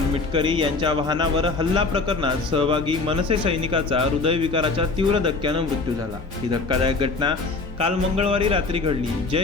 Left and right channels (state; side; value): quieter; right; 3.8 dB